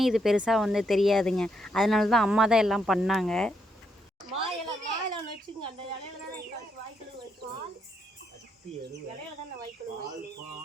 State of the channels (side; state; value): both; normal; correlation 0.78